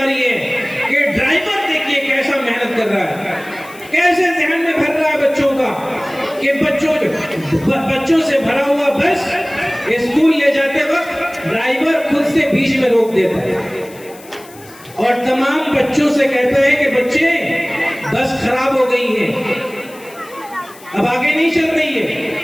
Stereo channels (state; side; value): noise; left; hiss, 22 dB below the sound